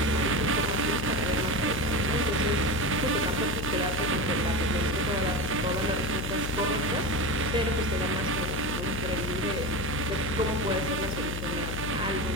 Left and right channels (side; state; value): left; noise; hum, 5 dB below the sound